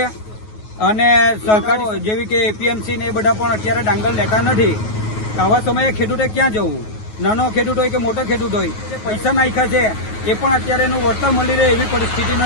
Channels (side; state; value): right; late; 9.4 ms